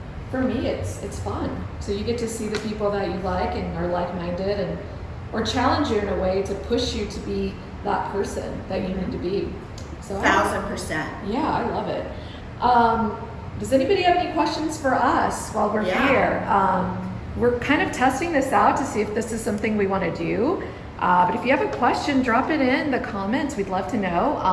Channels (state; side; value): identical; both; correlation 1.00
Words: For me, it's fun. So you get to see the people that you like and are like-minded, or challenge you in a way to push you to be that person that you need to be. So 1,000%. yeah, I love it. Does anybody have any questions for us while we're here? We're kind of testing this out to see if this is something we want to do. But if you have a question, drop it in the comments. We'd love to